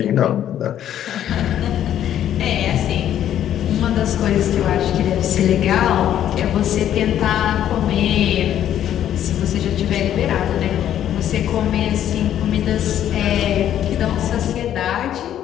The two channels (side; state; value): right; quieter; 10.9 dB